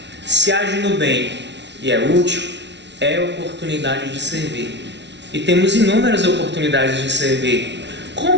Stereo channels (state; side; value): late; left; 0.51 ms